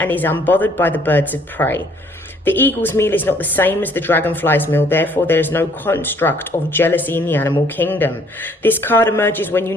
is unbothered by the birds of prey. The eagle's meal is not the same as the dragonfly's meal, therefore there is no construct of jealousy in the animal kingdom. This card emerges when you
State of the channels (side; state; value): both; normal; correlation 0.62